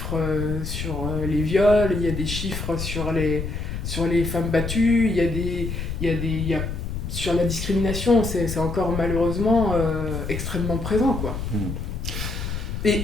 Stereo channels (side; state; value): left; noise; rumble, 5 dB below the sound